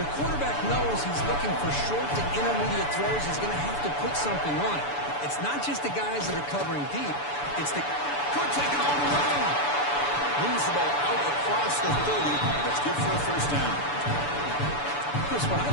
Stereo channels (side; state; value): right; late; 6.9 ms